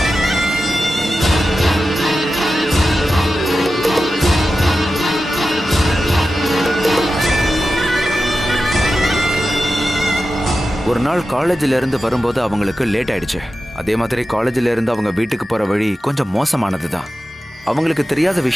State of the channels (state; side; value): normal; both; correlation 0.92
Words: ஒரு நாள் காலேஜில் இருந்து வரும்போது அவங்களுக்கு லேட் ஆயிடுச்சு. அதே மாதிரி காலேஜில் இருந்து அவங்க வீட்டுக்கு போற வழி கொஞ்சம் மோசமானது தான். அவங்களுக்கு தெரியாத